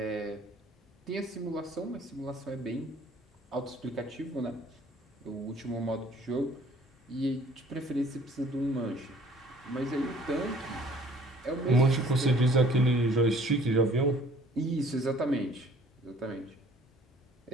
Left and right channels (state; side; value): normal; both; correlation 0.55